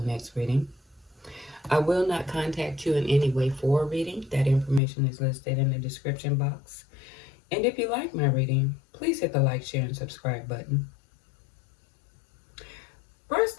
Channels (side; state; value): right; drops out; at 4.8 s